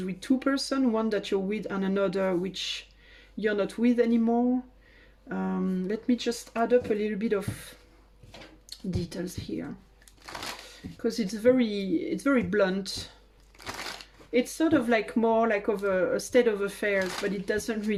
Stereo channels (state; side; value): identical; both; correlation 1.00